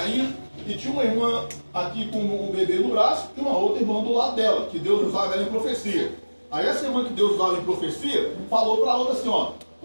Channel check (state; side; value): inverted; both; correlation -1.00